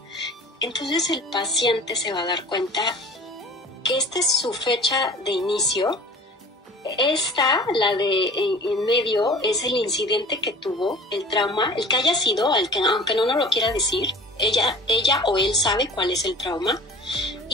entonces el paciente se va a dar cuenta que esta es su fecha de inicio. Esta, la de en medio, es el incidente que tuvo, el trauma, el que haya sido, aunque no nos lo quiera decir, ella o él sabe cuál es el trauma.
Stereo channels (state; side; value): normal; both; correlation 0.44